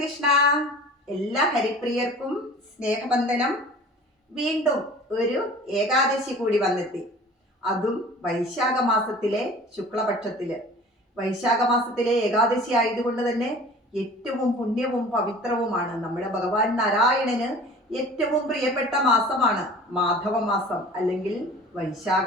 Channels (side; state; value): both; normal; correlation 0.44